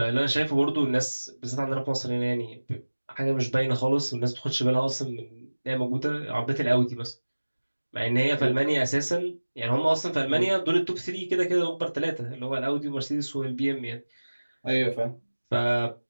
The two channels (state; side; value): inverted; both; correlation -1.00